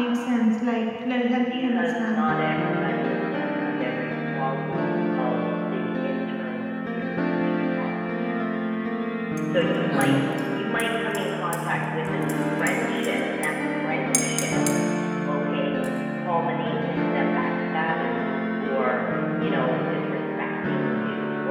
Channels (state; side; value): identical; both; correlation 1.00